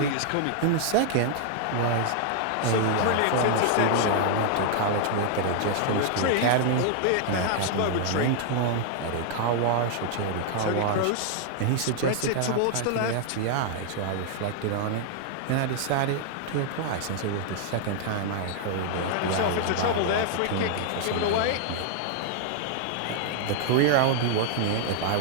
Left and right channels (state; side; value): different; both; correlation 0.00